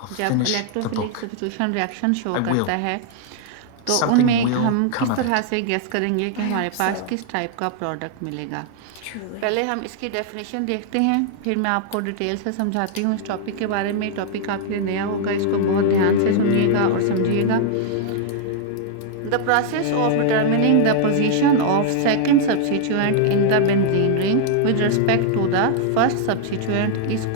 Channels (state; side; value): different; both; correlation -0.01